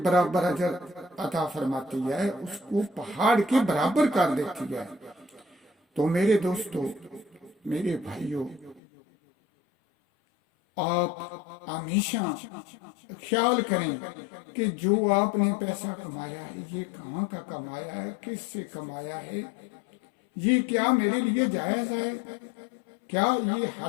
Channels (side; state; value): right; drops out; at 8.8 s